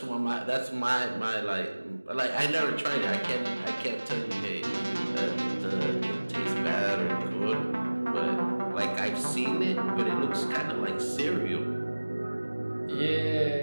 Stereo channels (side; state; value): both; inverted; correlation -1.00